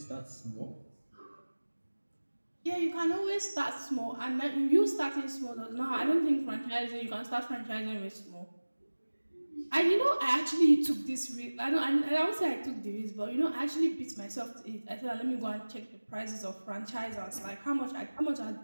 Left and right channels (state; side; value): inverted; both; correlation -1.00